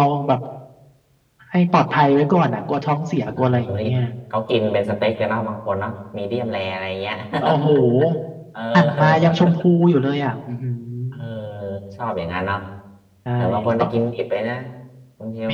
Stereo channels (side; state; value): both; identical; correlation 1.00